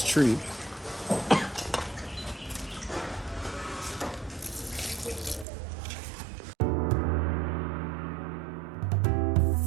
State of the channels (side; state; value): left; drops out; at 5.5 s